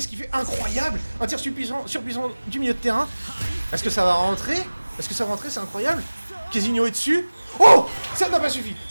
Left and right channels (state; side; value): inverted; both; correlation -1.00